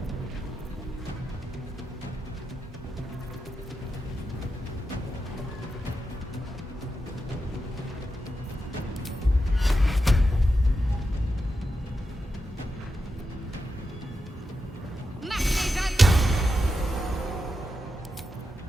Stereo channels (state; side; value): normal; both; correlation 0.88